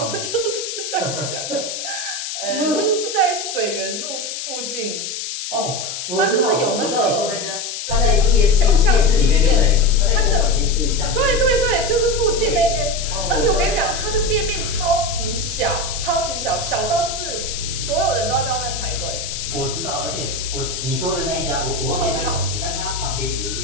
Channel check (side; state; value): left; noise; hiss, 6 dB below the sound